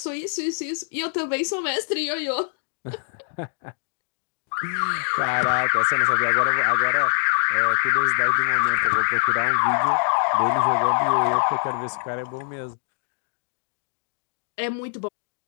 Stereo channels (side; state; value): right; silent; digital silence